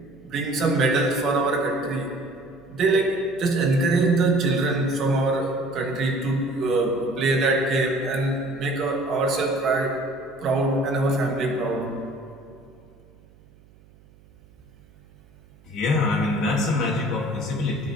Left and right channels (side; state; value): right; noise; hum, 27 dB below the sound